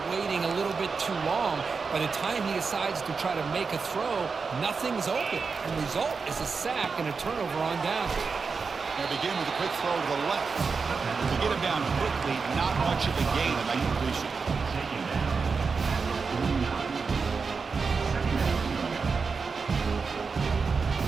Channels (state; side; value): quieter; left; 5.0 dB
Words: waiting a little bit too long. By the time he decides to try to make a throw, nothing's open. And the result is a sack and a turnover on down. They begin with a quick throw to the left. To get him down quickly, not much of a gain in that completion.